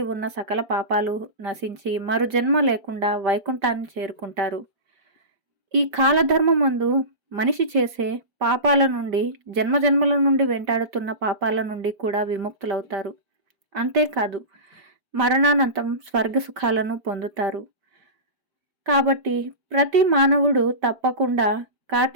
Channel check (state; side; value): late; left; 5.1 ms